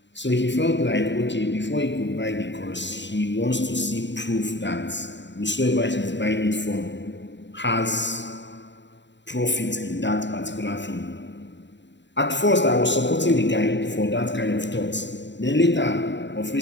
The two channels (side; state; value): right; late; 0.52 ms